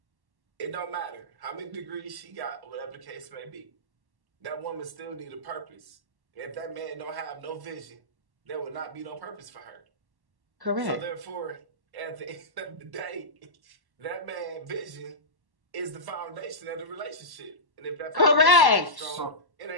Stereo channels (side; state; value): left; late; 1.1 ms